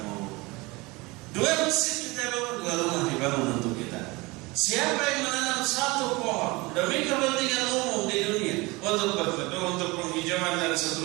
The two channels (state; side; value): quieter; left; 23.7 dB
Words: Dua masjid kita bangun, dua rumah dibangun untuk kita. Siapa yang menanam satu pohon demi kepentingan umum di dunia, untuk berteduh, untuk penghijauan dan